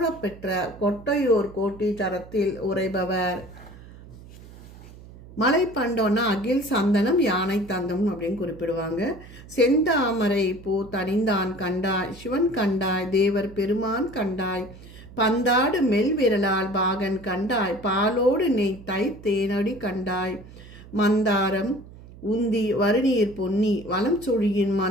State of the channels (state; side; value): noise; right; hum, 19 dB below the sound